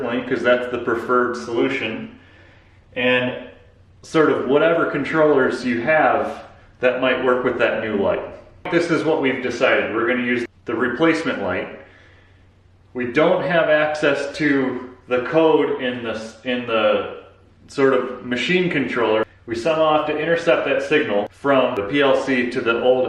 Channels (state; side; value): identical; both; correlation 1.00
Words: because that's the preferred solution, and sort of whatever controllers you have that might work with that new light. This is what we've decided. We're going to use the replacement light. We don't have access to the code in the sort of machine controller. We somehow have to intercept that signal from the PLC to the old